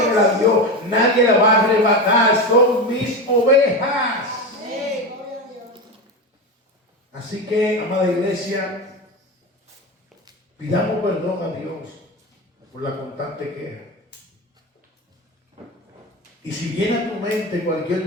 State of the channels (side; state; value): both; normal; correlation 0.20